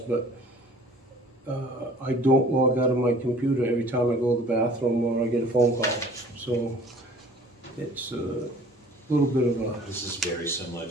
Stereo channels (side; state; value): both; normal; correlation 0.50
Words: but I don't log out of my computer every time I go to the bathroom or I get a phone call. So it's a little bit of a... This is very similar